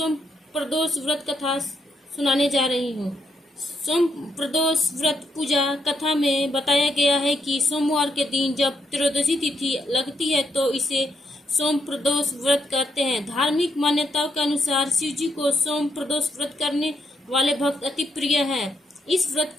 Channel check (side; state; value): both; normal; correlation 0.78